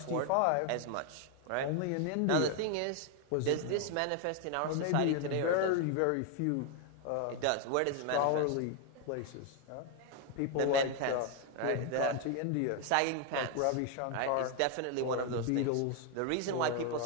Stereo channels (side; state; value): both; different; correlation 0.00